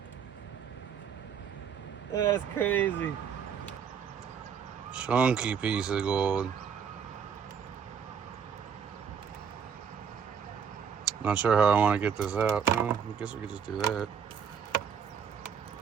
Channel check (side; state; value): left; quieter; 7.2 dB